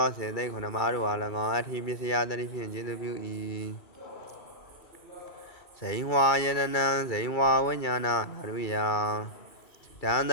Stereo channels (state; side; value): late; right; 2.3 ms